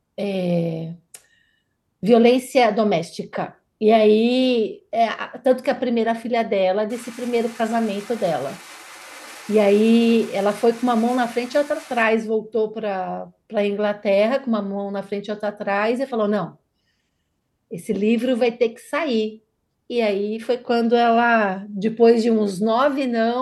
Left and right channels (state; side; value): identical; both; correlation 1.00